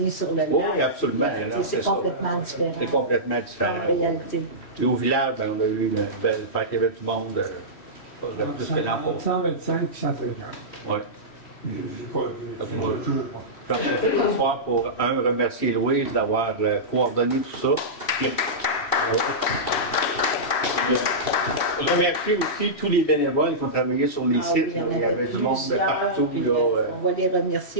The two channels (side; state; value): right; late; 3.1 ms